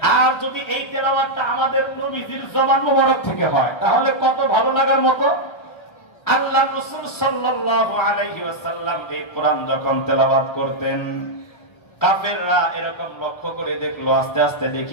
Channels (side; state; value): right; late; 1.3 ms